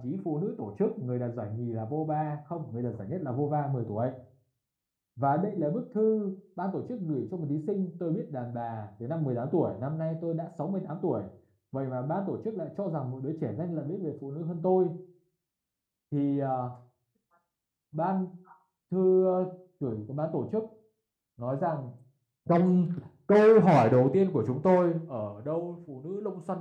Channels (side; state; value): both; identical; correlation 1.00